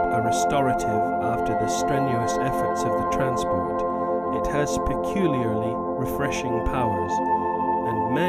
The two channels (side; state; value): both; identical; correlation 1.00